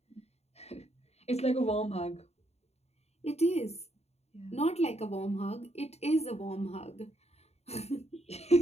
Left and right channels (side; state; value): right; late; 0.31 ms